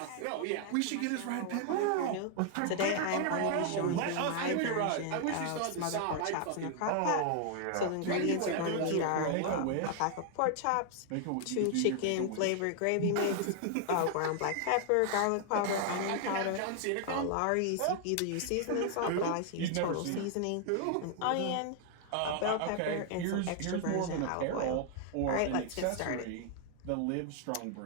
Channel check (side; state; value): both; different; correlation 0.00